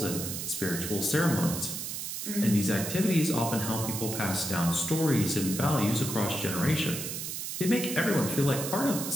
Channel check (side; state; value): right; noise; hiss, 5 dB below the sound